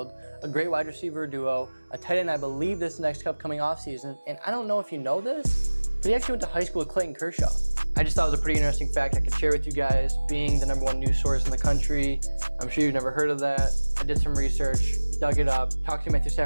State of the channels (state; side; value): inverted; both; correlation -1.00